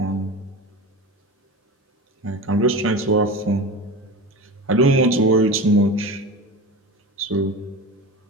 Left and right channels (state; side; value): normal; both; correlation 0.28